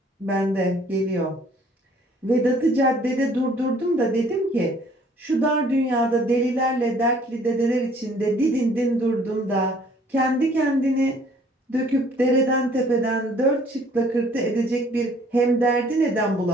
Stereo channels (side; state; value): both; normal; correlation 0.58